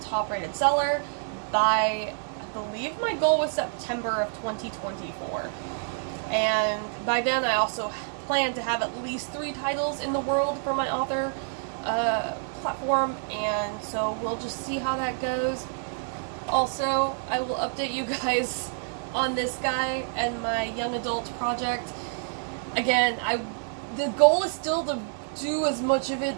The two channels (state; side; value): silent; left; digital silence